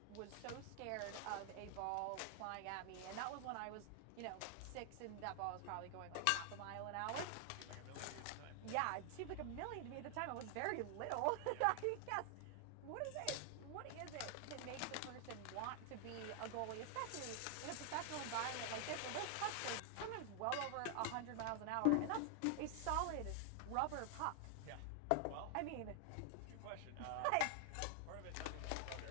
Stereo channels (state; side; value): different; both; correlation 0.00